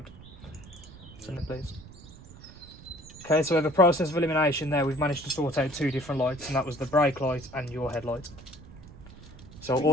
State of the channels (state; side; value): noise; right; rumble, 18 dB below the sound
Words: Send it please. Okay, so we have a process of elimination there. We've managed to sort out two different lights, and that was the brake light and your headlight. So